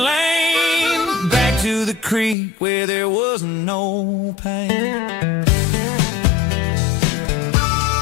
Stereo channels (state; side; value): drops out; right; at 2.4 s